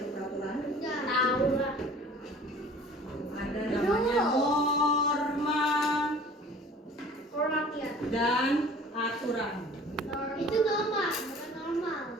peraturan? Tahu lah. Ada namanya norma Rakyat. dan aturan. Itu normal, bukan normal.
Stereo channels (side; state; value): both; normal; correlation 0.47